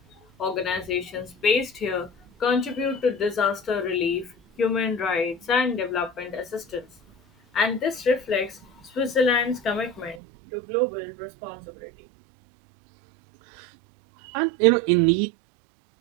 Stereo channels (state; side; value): drops out; left; at 10.2 s